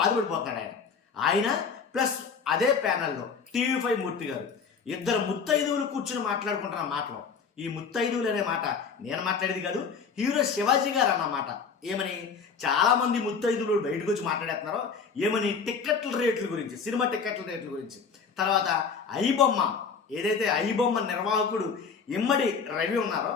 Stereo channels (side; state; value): right; quieter; 5.8 dB